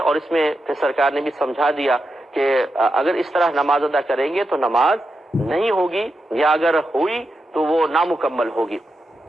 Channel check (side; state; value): both; normal; correlation 0.87